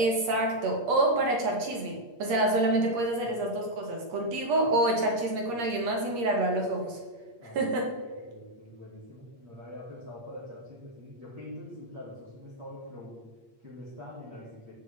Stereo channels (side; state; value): left; late; 8.5 ms